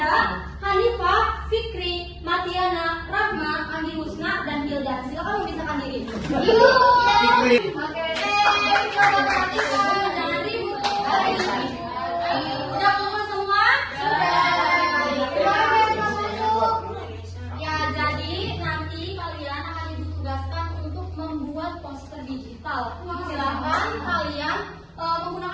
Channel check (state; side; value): identical; both; correlation 1.00